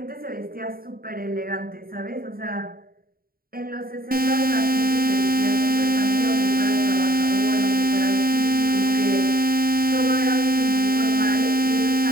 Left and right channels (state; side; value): late; left; 0.43 ms